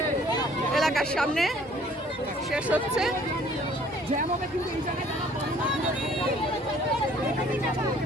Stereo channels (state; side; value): normal; both; correlation 0.56